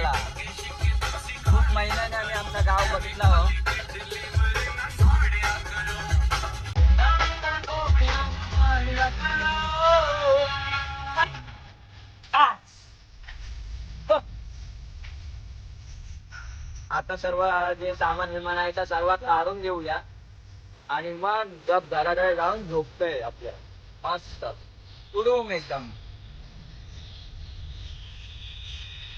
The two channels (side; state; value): both; identical; correlation 1.00